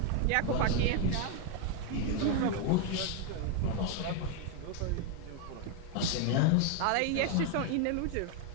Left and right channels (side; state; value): both; different; correlation 0.01